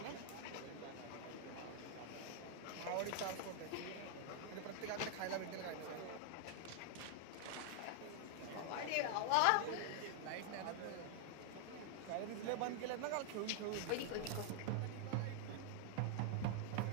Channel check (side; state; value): both; different; correlation 0.00